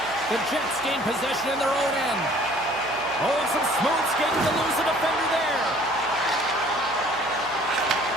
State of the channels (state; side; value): noise; right; hum, 21 dB below the sound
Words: The Jets gain possession in their own end. Oh, and some smooth skating to lose the defender there.